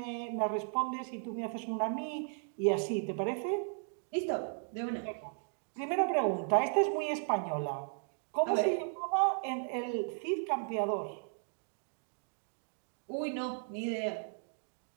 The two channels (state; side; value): silent; left; 54 dB below the other